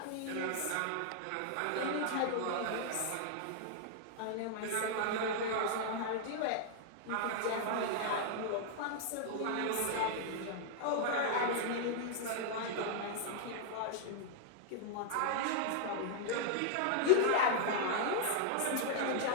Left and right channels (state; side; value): different; both; correlation -0.01